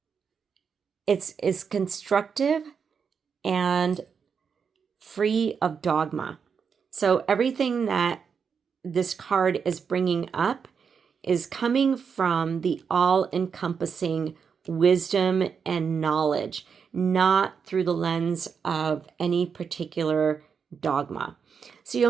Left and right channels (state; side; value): quieter; left; 6.3 dB